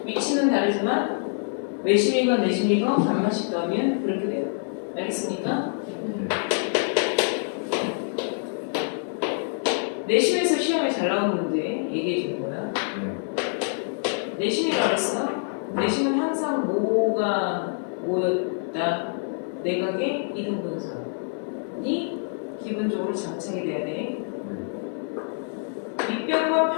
위치는 다르지만 외심이건 내심이건 반만씩 더하면 그렇게 돼요. 알겠습니까? 내심에서 시험에 잘 나오는 문제 얘기해 준 거야. 내심이라고 했어? 내심은 항상 뭐가 모였다. 내각의 이등분선이 기본적으로 안쪽으로 장착이 돼야 돼. 밑변과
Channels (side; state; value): right; silent; 61 dB below the other